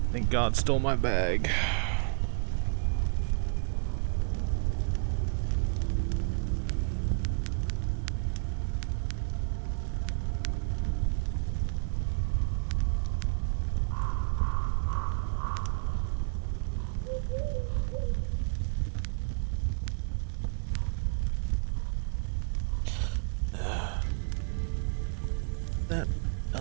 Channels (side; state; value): left; silent; digital silence